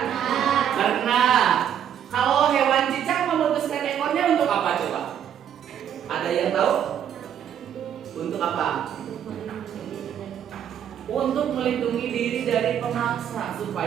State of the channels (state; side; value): quieter; left; 9.3 dB